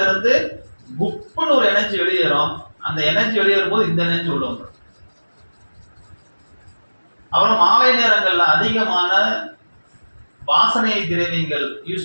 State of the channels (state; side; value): inverted; both; correlation -1.00